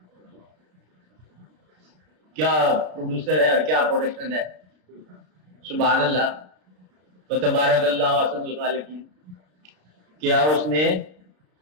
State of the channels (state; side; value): late; left; 33 ms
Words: کیا پروڈیوسر ہے اور کیا پروڈکشن ہے. سبحان اللہ و تبارک اللہ احسن الخالقین. کیا اس نے